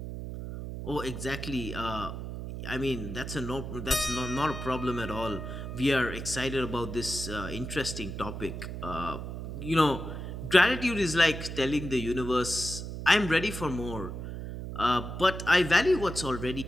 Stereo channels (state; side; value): noise; right; hum, 7 dB below the sound